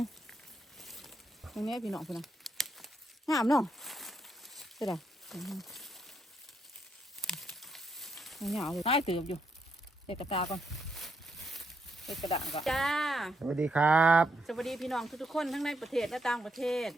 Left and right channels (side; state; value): both; normal; correlation 0.78